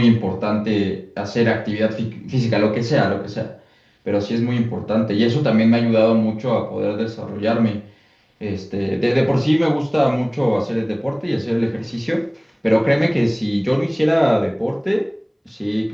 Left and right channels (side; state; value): both; identical; correlation 1.00